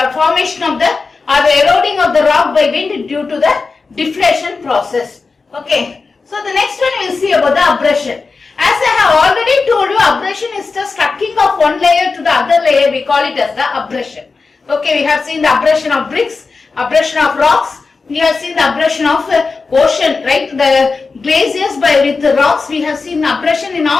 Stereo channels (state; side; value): quieter; right; 4.3 dB